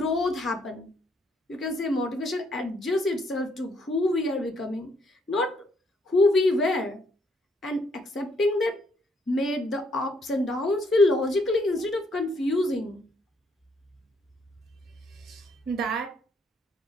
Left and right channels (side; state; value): both; normal; correlation 0.70